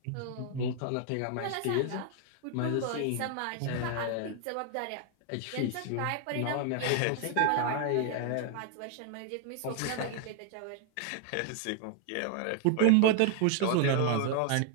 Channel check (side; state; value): both; different; correlation 0.00